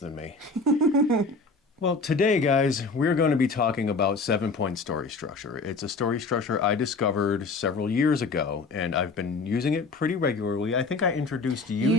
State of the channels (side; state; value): right; quieter; 3.9 dB